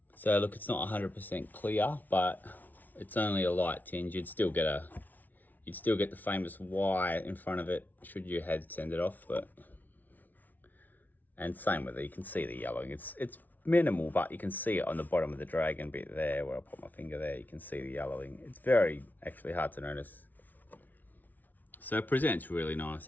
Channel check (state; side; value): late; right; 0.081 ms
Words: So look, it's not 100% clear, but it's only a light tinge. You'd still get the famous Y in front of it should you had send it off, but and same with it, you can see the yellowing. It's minimal, but you can see it on the bottom of the dragon bit there where I put my finger there. You can see the yellowing. It's very actually hard to notice. So it presents really nice,